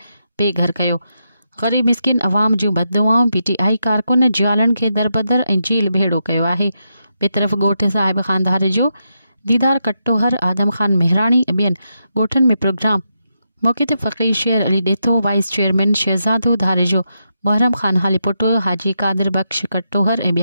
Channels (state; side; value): inverted; both; correlation -0.84